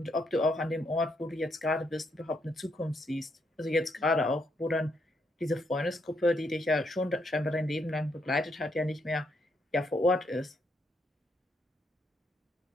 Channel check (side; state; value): both; normal; correlation 0.76